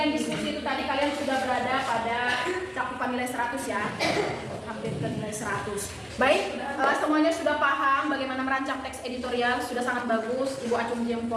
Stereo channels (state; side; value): identical; both; correlation 1.00